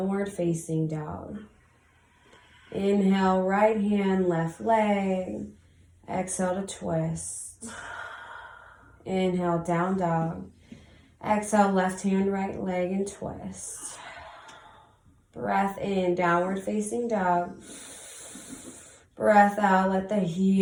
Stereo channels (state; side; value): identical; both; correlation 1.00